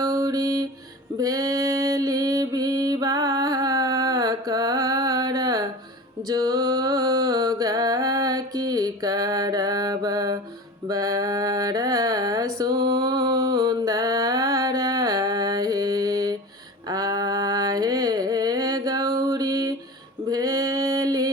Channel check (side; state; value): both; normal; correlation 0.34